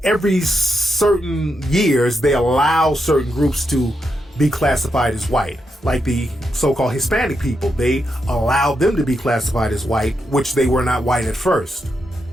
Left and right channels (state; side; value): normal; both; correlation 0.84